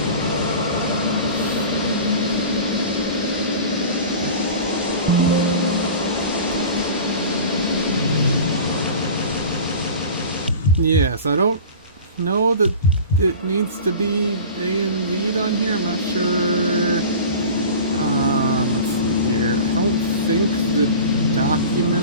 Yes, I don't know that it needs to be AMV'd on here. I'm not sure. Let's see here. I don't think the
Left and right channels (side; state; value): both; inverted; correlation -0.37